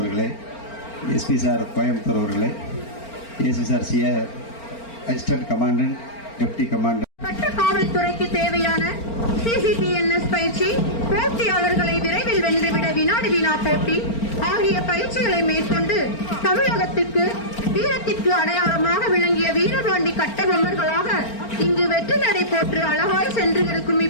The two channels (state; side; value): late; right; 4.4 ms